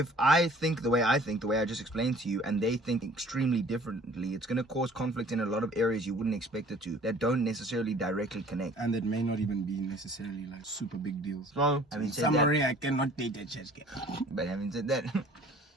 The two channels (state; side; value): normal; both; correlation 0.51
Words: I think the way I just explained to you, and they think extremely differently, it's going to cause conflict in a lot of areas you wouldn't expect it to, that don't necessarily directly connect. And that may not even be necessarily like super big deals. So, having said summary, that, I cannot date a church girl. but having said that,